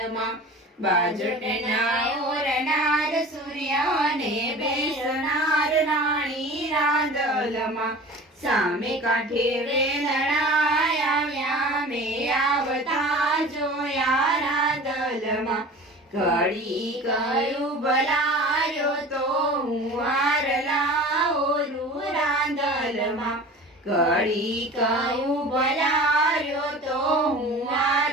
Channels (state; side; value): normal; both; correlation 0.39